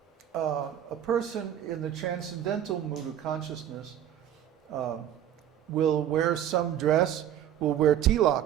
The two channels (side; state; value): left; quieter; 10.7 dB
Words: A person in the transcendental mood of consciousness will wear some dress, will wear